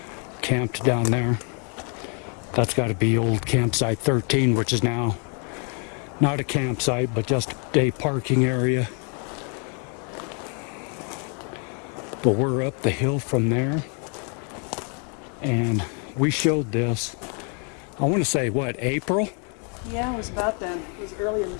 camped down there. That's got to be old campsite 13, which is now not a campsite, but just a parking area. But we're up the hill from there, and we showed this, I want to say, what, April? Yeah, it was about then. It was early in the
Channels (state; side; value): quieter; right; 38.7 dB